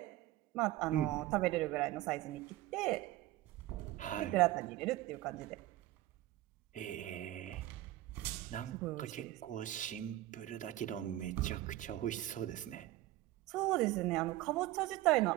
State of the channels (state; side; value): quieter; left; 15.8 dB